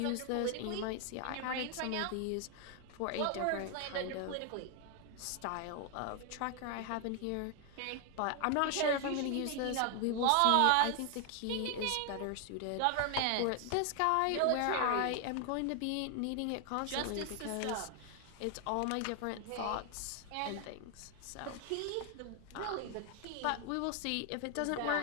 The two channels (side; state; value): both; different; correlation 0.00